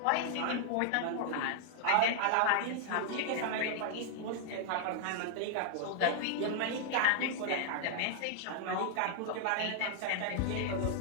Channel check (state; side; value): different; both; correlation -0.01